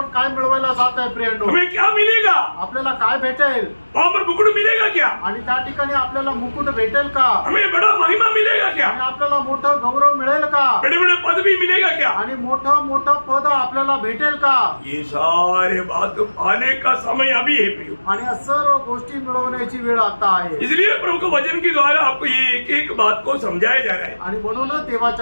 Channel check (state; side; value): inverted; both; correlation -1.00